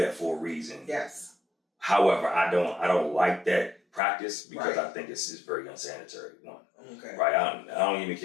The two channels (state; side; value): drops out; right; at 4.0 s